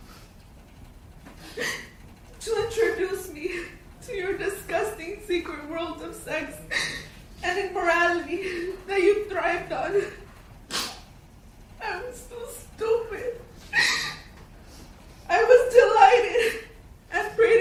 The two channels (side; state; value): both; identical; correlation 1.00